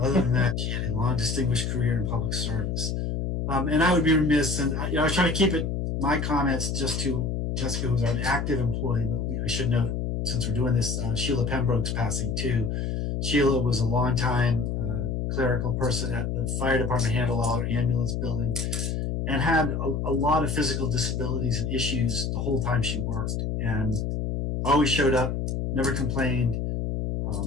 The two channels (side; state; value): left; noise; hum, 1 dB below the sound